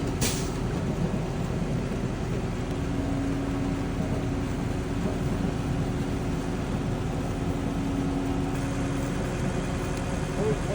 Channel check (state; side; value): identical; both; correlation 1.00